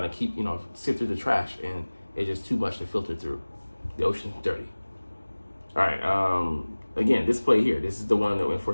to keep, sift through the trash, and it's just too much to filter through. The ocean's dirty. All right, again, this play here, this is the one that went for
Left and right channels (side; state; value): both; inverted; correlation -1.00